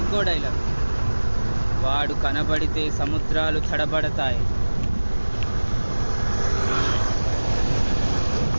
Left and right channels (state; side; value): inverted; both; correlation -1.00